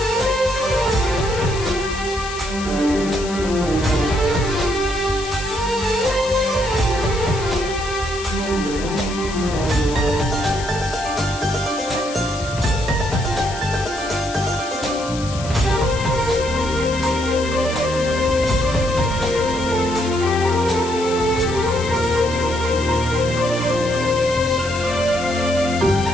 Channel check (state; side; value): noise; left; hiss, 12 dB below the sound